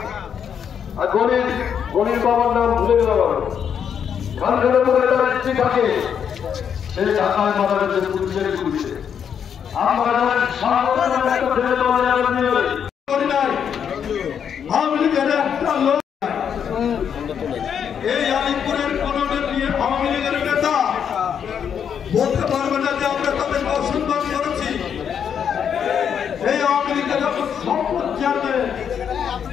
গণির বাবার নাম ভুলে গেলাম, খানখানে পরে তার ইচ্ছে থাকে, সেই ঢাকায় মারা গেছে পুলিশের গুলিতে। আমরা এই আলিপুরের কোন আওয়ামী লীগের নেতা বলতে পারবে না যে আমরা তাদের অসম্মান করেছি। এই আওয়ামী লীগের সম্পদ চেয়ারম্যান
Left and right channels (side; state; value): right; quieter; 7.9 dB